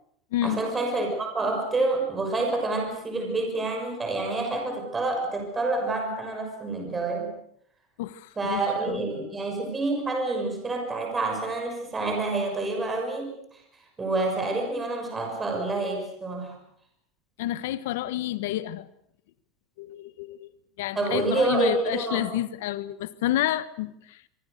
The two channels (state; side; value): normal; both; correlation 0.32